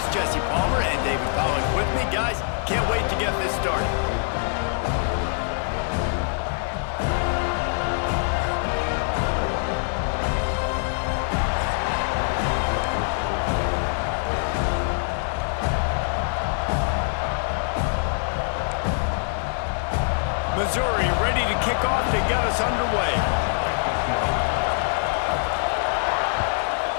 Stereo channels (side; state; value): right; silent; 62 dB below the other